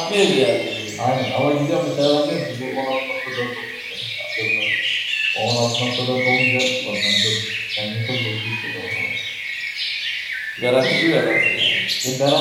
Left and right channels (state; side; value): identical; both; correlation 1.00